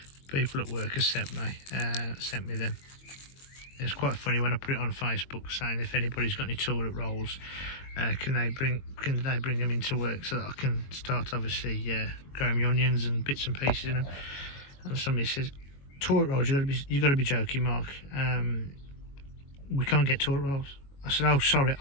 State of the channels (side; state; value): right; late; 21 ms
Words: People at work have sent me them. It's quite funny when I put it on Facebook saying if anybody's got any toilet rolls, can they bring them into work so that I can start obviously growing my onions and bits and pieces in them. And somebody says, toilet rolls, you got to be joking, Mark. We can't get toilet rolls. I said, oh sorry,